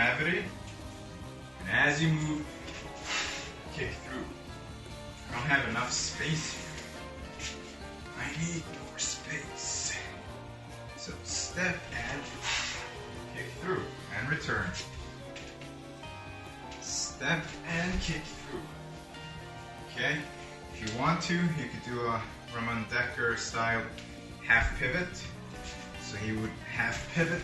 And as you move, kick through. I don't have enough space here. I need more space. So step and kick through and return. Step and kick through. Okay? If you want to, you could do a Ramon Decker style half pivot. So he would half pivot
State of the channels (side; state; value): both; identical; correlation 1.00